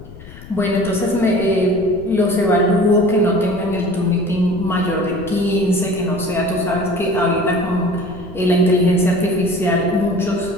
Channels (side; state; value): left; noise; rumble, 17 dB below the sound